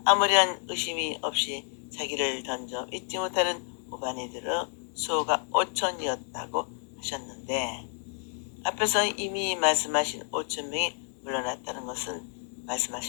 아무런 의심이 없이 자기를 던져 잊지 못하는 우바니들의 수호가 5천이었다고 하셨는데 앞에서 이미 말씀하신 5,000명이 물러났다는 것은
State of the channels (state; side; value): silent; right; 58 dB below the other